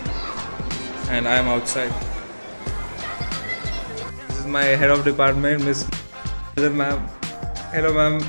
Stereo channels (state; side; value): inverted; both; correlation -1.00